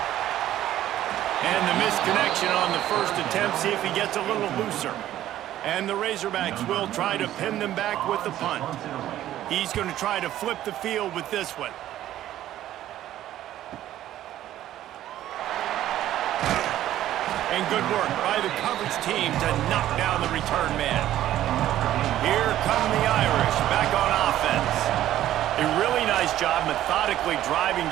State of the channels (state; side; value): quieter; left; 13.0 dB